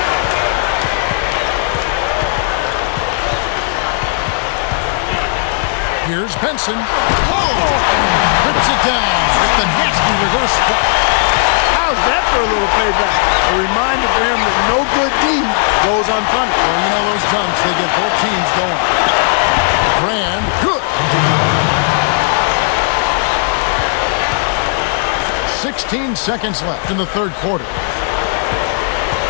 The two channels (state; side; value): silent; right; digital silence